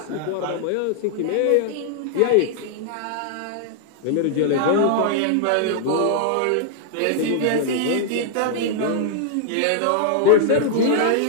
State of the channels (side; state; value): both; different; correlation -0.01